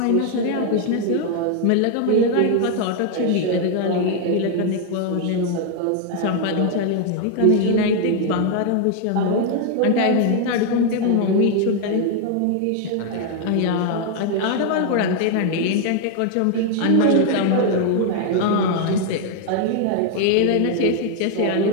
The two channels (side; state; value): both; different; correlation 0.00